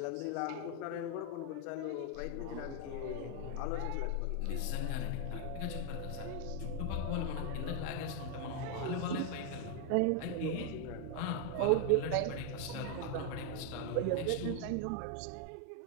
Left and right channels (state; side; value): different; both; correlation 0.01